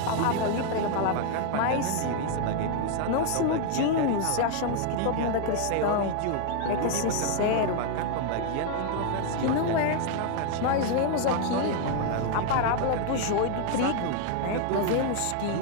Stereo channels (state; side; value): different; both; correlation 0.00